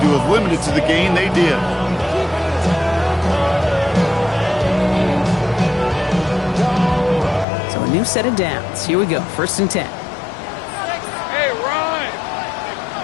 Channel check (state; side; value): drops out; right; at 7.5 s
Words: have limited to the gain they did. So a new set of downs. Here we go, 1st and 10. Hey, Ryan.